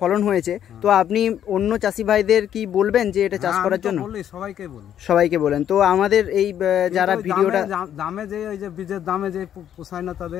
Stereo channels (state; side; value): quieter; right; 10.1 dB